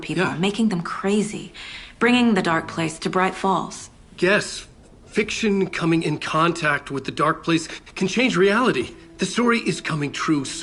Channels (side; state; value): both; identical; correlation 1.00